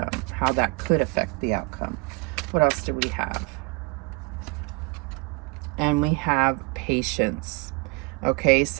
how that could affect the outcome. What else do we have? And we have patience. Okay,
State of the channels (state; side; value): quieter; left; 27.7 dB